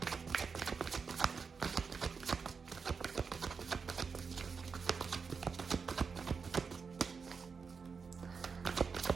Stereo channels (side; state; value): left; quieter; 5.4 dB